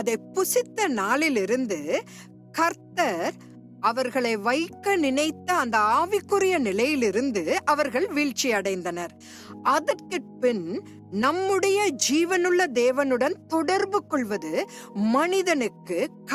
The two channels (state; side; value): identical; both; correlation 1.00